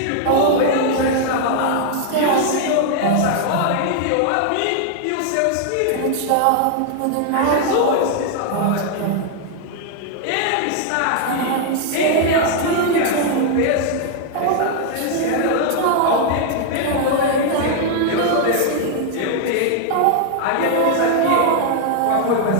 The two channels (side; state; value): both; different; correlation 0.00